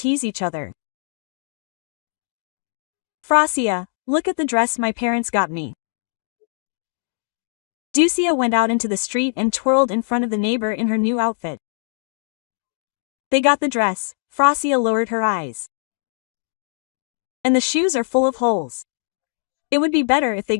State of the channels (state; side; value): silent; right; 64 dB below the other